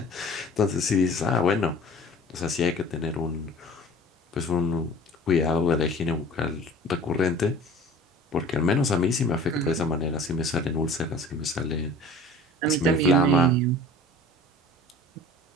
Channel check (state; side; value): normal; both; correlation 0.44